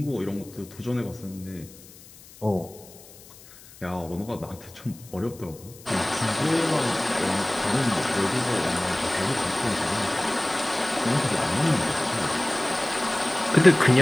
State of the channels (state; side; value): noise; left; hiss, 21 dB below the sound